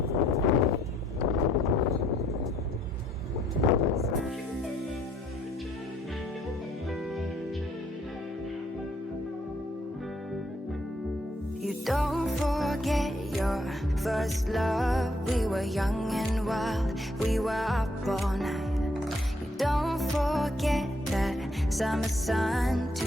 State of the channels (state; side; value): normal; both; correlation 0.69